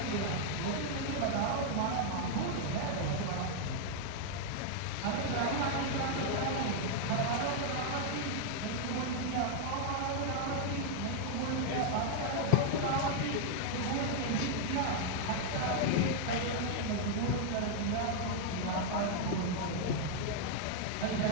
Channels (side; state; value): both; different; correlation 0.00